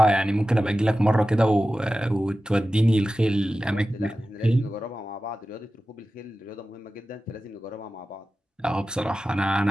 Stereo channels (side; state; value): both; normal; correlation 0.94